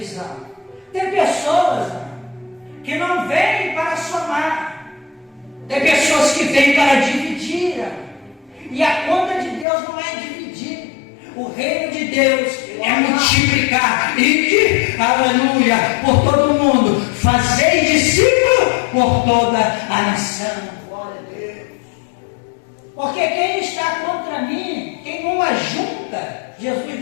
Tem pessoas que não vêm para somar. Tem pessoas que vêm para dividir. E a conta de Deus não é dividir. O reino de Deus é multiplicar. Ide, aleluia, por todo o mundo. Fazei discípulo por toda a nação. Glória a Deus. Porque quem está contra mim, quem não ajunta,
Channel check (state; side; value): drops out; right; at 9.7 s